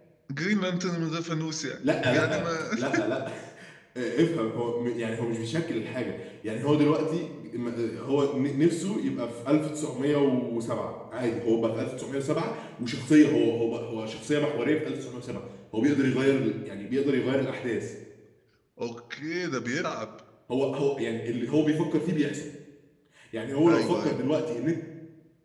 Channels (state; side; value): identical; both; correlation 1.00